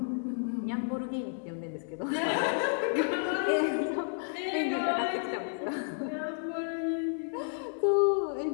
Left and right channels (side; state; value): right; silent; digital silence